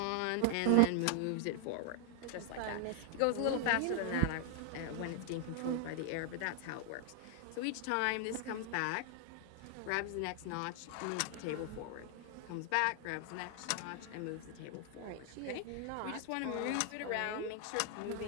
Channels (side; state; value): both; different; correlation 0.00